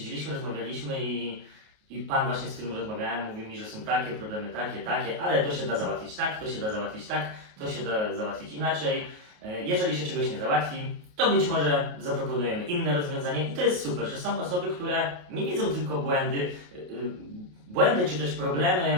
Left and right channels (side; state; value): left; late; 28 ms